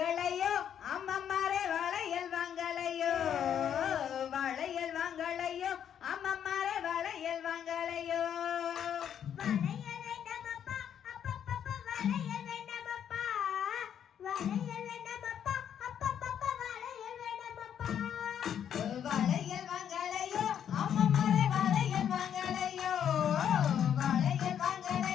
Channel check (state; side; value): quieter; right; 9.1 dB